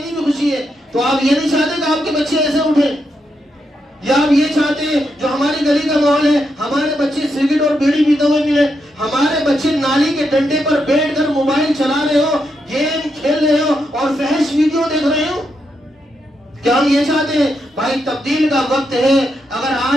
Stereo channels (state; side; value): normal; both; correlation 0.82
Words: بھی خوشی ہے۔ تو آپ یہ نہیں چاہتے کہ آپ کے بچے ایسے اٹھیں، یا آپ یہ چاہتے ہیں جو ہماری گلی کا ماحول ہے، ہمارے بچے سگریٹ اور بیڑی پیتے ہوئے ملے، ہمارے بچے نالی کے ڈنڈے پر بیٹھ کر موبائل چلا رہے ہو، گیم کھیل رہے ہو اور فحش ویڈیو دیکھ رہے ہو؟ کیا ہم یہ چاہتے ہیں؟ بھائی تبدیل کا وقت ہے۔ اگر